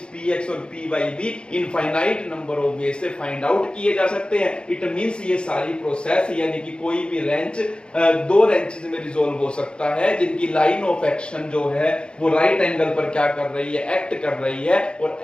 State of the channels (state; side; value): late; right; 0.053 ms